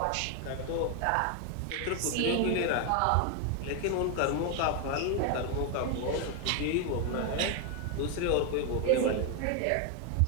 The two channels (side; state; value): both; different; correlation 0.01